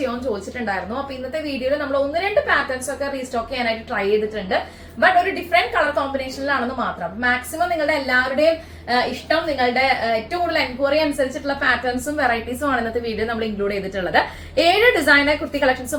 ചോദിച്ചിട്ടുണ്ടായിരുന്നു. അപ്പൊ ഇന്നത്തെ വീഡിയോയിൽ നമ്മൾ ഒന്ന് രണ്ട് പാറ്റേൺസ് ഒക്കെ റീസ്റ്റോക്ക് ചെയ്യാനായിട്ട് ട്രൈ ചെയ്തിട്ടുണ്ട്. ബട്ട് ഒരു ഡിഫറെന്റ് കളർ കോമ്പിനേഷനിലാണെന്ന് മാത്രം. മാക്സിമം നിങ്ങളുടെ എല്ലാവരുടെയും ഇഷ്ടം, നിങ്ങളുടെ ഏറ്റവും കൂടുതൽ എൻക്വയറി അനുസരിച്ചിട്ടുള്ള പാറ്റേൺസും വെറൈറ്റീസും ആണ് ഇന്നത്തെ വീഡിയോ നമ്മൾ ഇൻക്ലൂഡ് ചെയ്തിട്ടുള്ളത്. 7 ഡിസൈനർ കുർത്തി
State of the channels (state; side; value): identical; both; correlation 1.00